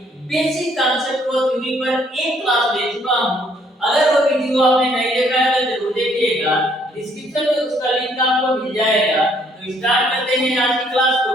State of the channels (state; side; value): normal; both; correlation 0.65